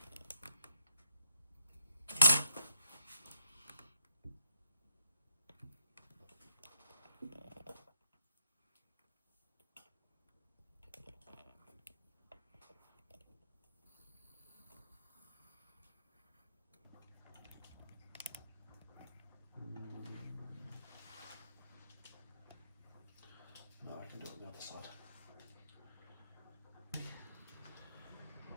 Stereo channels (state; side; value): inverted; both; correlation -0.73